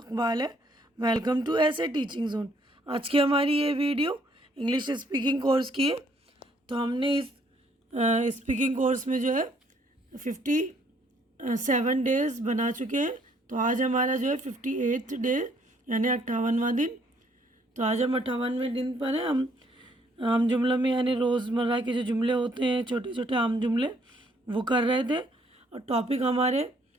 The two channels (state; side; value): normal; both; correlation 0.66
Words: है। वेलकम टू ऐसे टीचिंग जोन। आज की हमारी ये वीडियो इंग्लिश स्पीकिंग कोर्स की है। तो हमने इस स्पीकिंग कोर्स में जो है 57 डेज़ बना चुके हैं। तो आज हमारा जो है 58th डे यानी 58वां दिन। तो आज हम 58वें दिन पर हैं। हम आम जुमलों में यानी रोज़मर्रा के जो जुमले होते हैं, छोटे छोटे आम जुमले, वो कर रहे थे। और टॉपिक हमारे